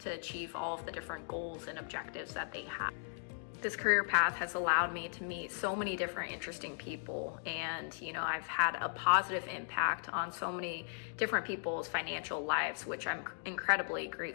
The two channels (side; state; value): right; silent; digital silence